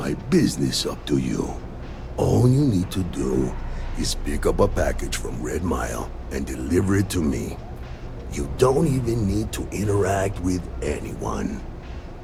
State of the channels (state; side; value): identical; both; correlation 1.00